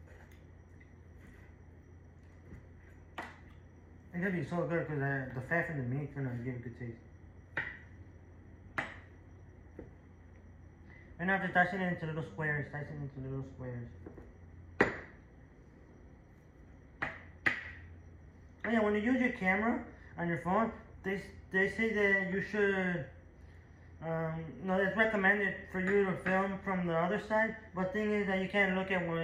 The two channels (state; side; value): identical; both; correlation 1.00